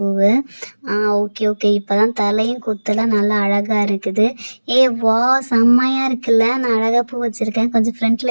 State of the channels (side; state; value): both; inverted; correlation -1.00